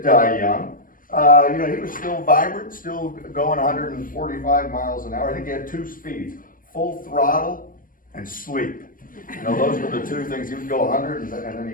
die young. He was still vibrant, still going 145 miles an hour. I think he had 2 speeds: full throttle and sleep. Those were the 2 things. He would go 100 and then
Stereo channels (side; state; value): right; late; 0.40 ms